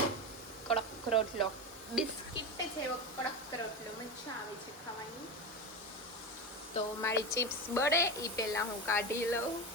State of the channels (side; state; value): both; normal; correlation 0.20